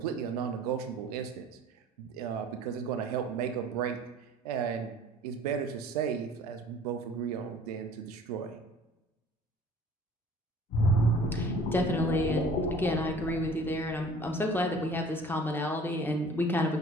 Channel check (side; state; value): both; normal; correlation 0.49